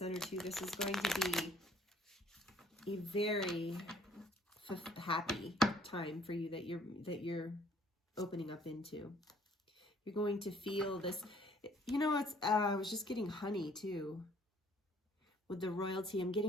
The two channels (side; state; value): both; normal; correlation 0.59